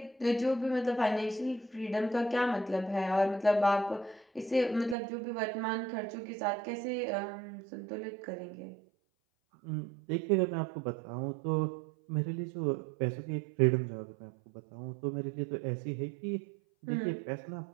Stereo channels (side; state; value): left; drops out; at 5.0 s